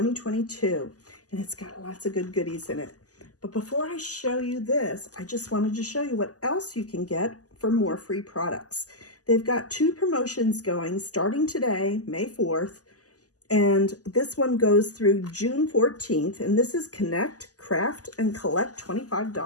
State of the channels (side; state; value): right; late; 0.67 ms